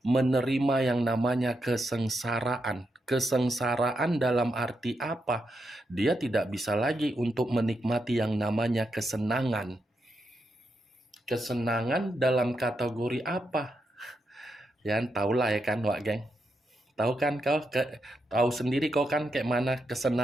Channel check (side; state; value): both; normal; correlation 0.84